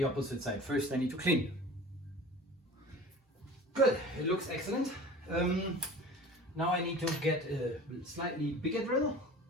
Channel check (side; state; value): both; normal; correlation 0.40